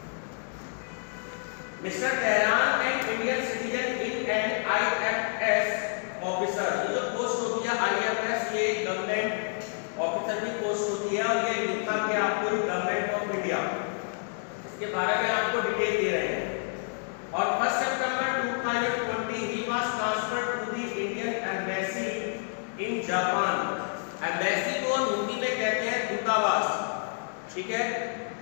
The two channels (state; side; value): silent; right; 59 dB below the other